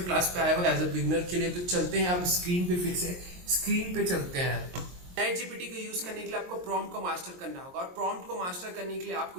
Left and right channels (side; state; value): left; late; 22 ms